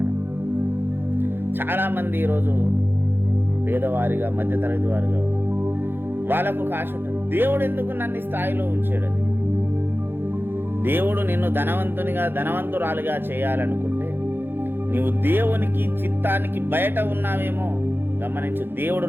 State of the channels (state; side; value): late; left; 0.10 ms